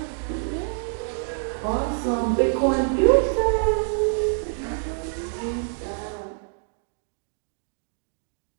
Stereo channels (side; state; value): left; silent; digital silence